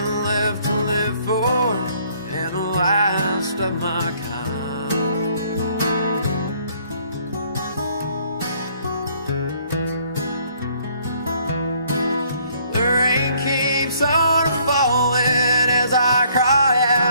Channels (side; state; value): both; inverted; correlation -0.63